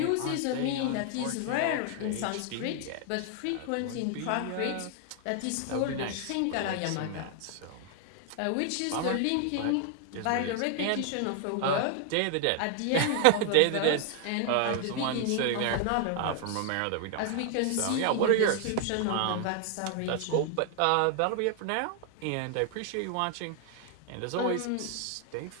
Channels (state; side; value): different; both; correlation 0.00